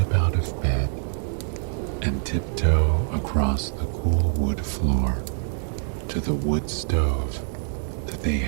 out of bed and tiptoe across the cool wood floor to the wood stove that they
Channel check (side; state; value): left; silent; digital silence